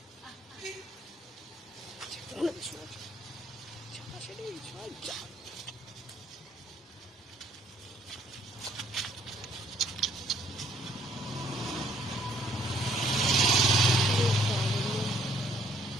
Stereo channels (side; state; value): both; normal; correlation 0.65